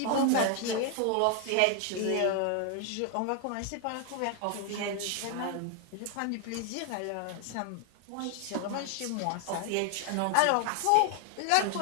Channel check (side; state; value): both; different; correlation 0.00